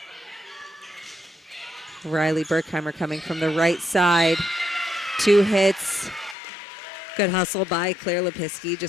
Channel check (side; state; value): right; drops out; at 6.4 s